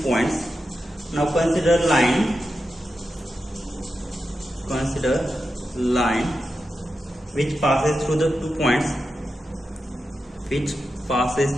points? Now, consider line which passes through the 2 points, which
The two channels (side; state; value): both; normal; correlation 0.90